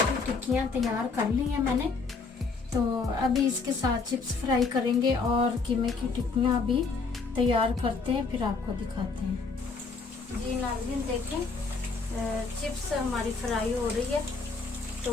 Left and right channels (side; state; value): right; quieter; 4.4 dB